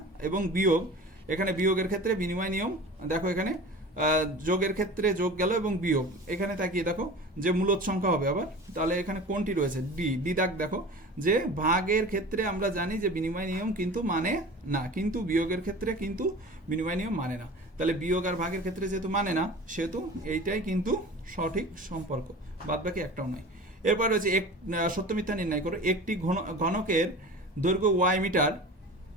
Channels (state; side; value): normal; both; correlation 0.37